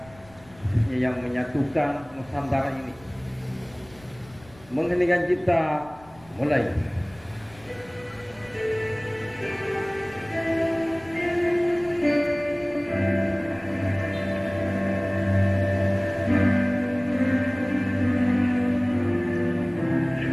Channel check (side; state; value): left; noise; rumble, 25 dB below the sound